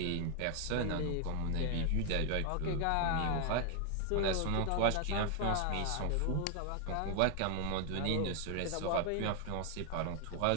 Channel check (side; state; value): both; different; correlation 0.00